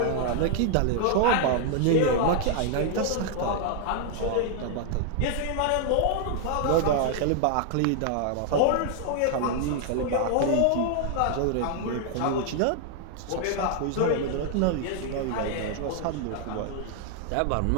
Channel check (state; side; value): different; both; correlation 0.00